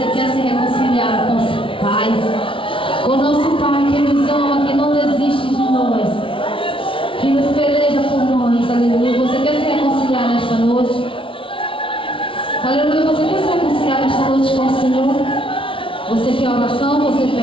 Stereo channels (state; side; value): late; right; 0.25 ms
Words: quer se reconciliar com o Pai. Com o nosso Pai que nos ama, que não desiste de nós. Que nos peleja por nós. Aleluia. Você quer se reconciliar nesta noite? Aleluia. Você quer se reconciliar nesta noite com o Senhor? Você quer oração? Você